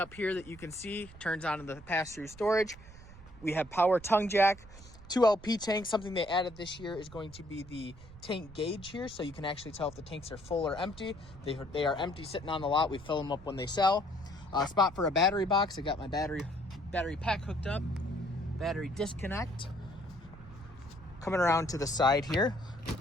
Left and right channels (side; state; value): right; noise; rumble, 18 dB below the sound